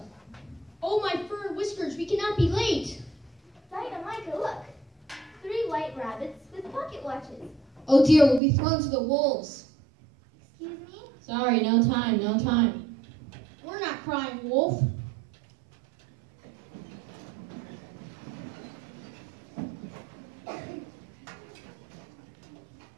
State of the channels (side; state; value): left; drops out; at 8.4 s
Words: Oh, my fur and whiskers, we cannot be late. Dinah, Micah, look. 3 white rabbits with pocket watches. Oh dear, we'll be thrown to the wolves. Excuse me? Sorry, no time. We're not crying wolf.